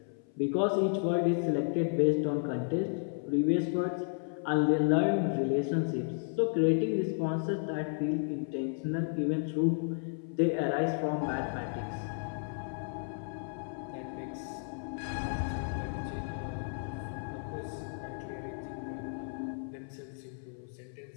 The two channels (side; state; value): right; silent; 56 dB below the other